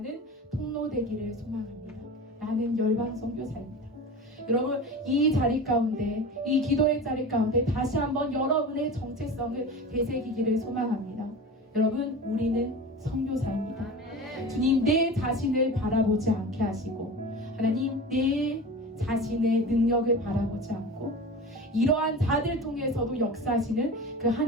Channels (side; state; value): both; normal; correlation 0.32